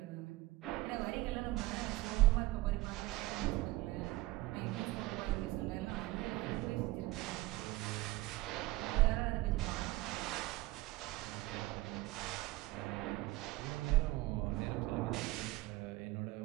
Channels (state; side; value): quieter; left; 18.7 dB